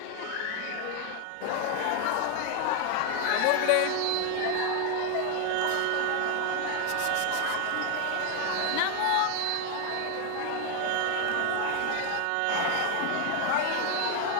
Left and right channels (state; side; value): different; both; correlation 0.00